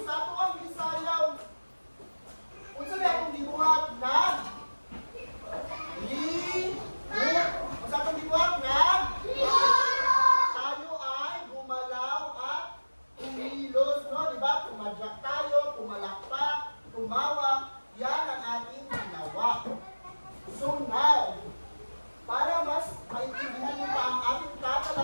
sa tuwang isayaw, kung saan akong gibuhat na kung saan akong gibuhat na tayo ay gumalaw at kumilos, no? Diba? Tumadyak tayo, pumalakpak, tumawa. Yan ang ating ginawa. So now, para mas maintindihan niyo pa ang ating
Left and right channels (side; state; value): both; inverted; correlation -1.00